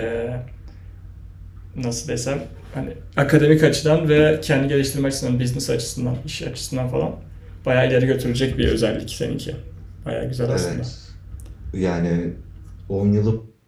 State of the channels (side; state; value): both; identical; correlation 1.00